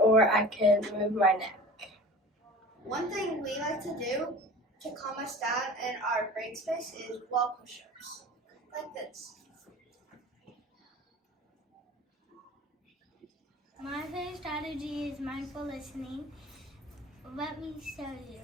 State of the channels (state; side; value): normal; both; correlation 0.39